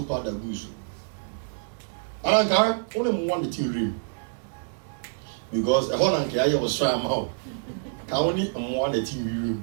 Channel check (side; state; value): left; silent; digital silence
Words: powder gu so ananka wɔn mu wɔn de ti real because ɛhɔ na nka ayɛ ɔsoro ama o ka wɔn ni mmoa de ti real